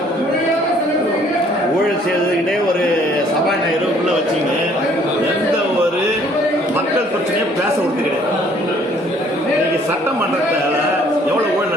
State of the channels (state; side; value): normal; both; correlation 0.60